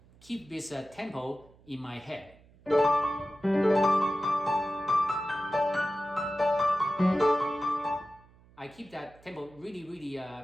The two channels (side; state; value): right; noise; hum, 27 dB below the sound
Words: keep this tempo in my head. I keep that tempo really